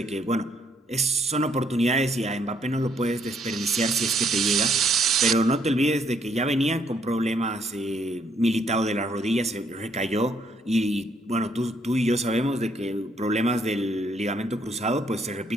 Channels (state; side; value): normal; both; correlation 0.69